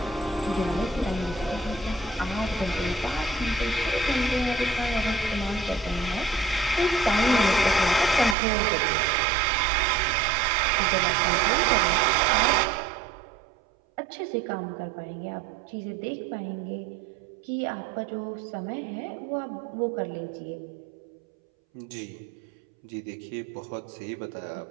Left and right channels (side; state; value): left; drops out; at 8.3 s